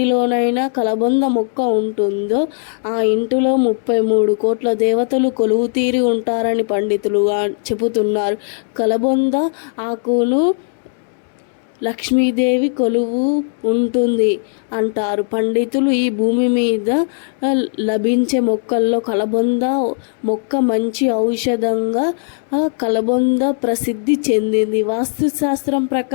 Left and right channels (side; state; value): right; silent; digital silence